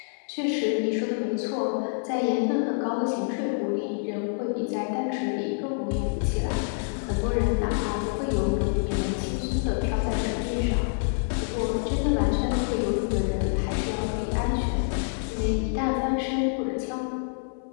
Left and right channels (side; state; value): right; silent; 56 dB below the other